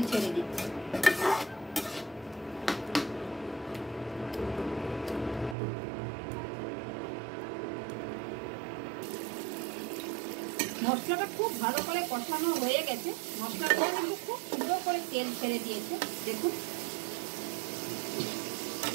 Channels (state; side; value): drops out; left; at 5.6 s